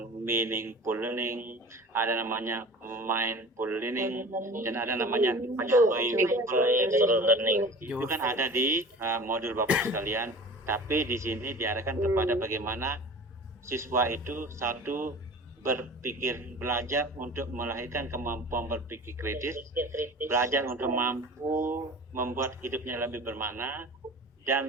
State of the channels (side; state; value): both; normal; correlation 0.39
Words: meaningful learning, ada namanya mindful learning, dan ada namanya joyful learning. Itu kan ada di modul Bapak sekalian. Tapi di sini diarahkan kepada bagaimana siswa itu satu berpikir, belajar untuk melahirkan kemampuan berpikir kritis, belajar untuk mampu membuat hidupnya lebih bermakna,